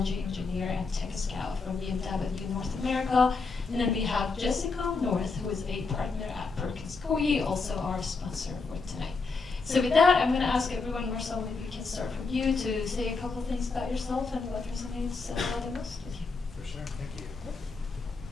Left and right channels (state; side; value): quieter; right; 4.3 dB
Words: engineer and tech scout from BMW North America. And then we have Jessica North, who is a partner at Perkins Coie, also our sponsor for tonight. So with that, I'm going to ask everyone, Marcel, maybe we can start from you to say a couple things about yourself and what resonates the most with you. For sure, thank you.